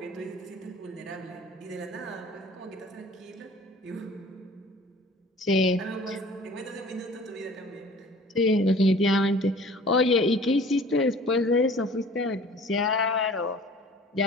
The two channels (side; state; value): both; normal; correlation 0.48